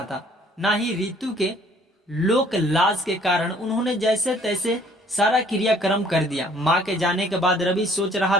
था, ना ही रितु के लोक लाज के कारण उन्होंने जैसे तैसे सारा क्रियाक्रम कर दिया। माँ के जाने के बाद रवि सोच रहा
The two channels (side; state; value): both; normal; correlation 0.58